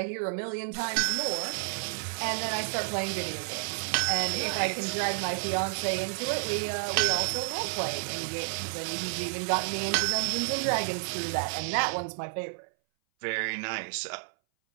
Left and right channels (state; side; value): silent; left; 58 dB below the other